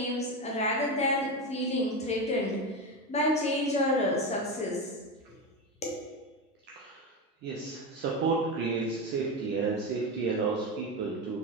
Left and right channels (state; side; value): normal; both; correlation 0.17